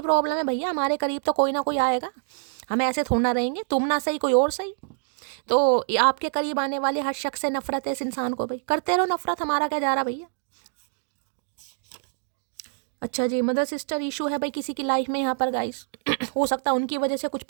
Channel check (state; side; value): silent; left; digital silence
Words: प्रॉब्लम है भैया, हमारे करीब तो कोई ना कोई आएगा, हम ऐसे थोड़ा ना रहेंगे, तुम ना सही कोई और सही। तो आपके करीब आने वाले हर शख्स से नफरत है इस इंसान को, भाई करते रहो नफरत, हमारा क्या जा रहा भैया। अच्छा जी, मदर सिस्टर इशू है भाई किसी की लाइफ में यहाँ पर गाइस। हो सकता है उनकी वजह से कुछ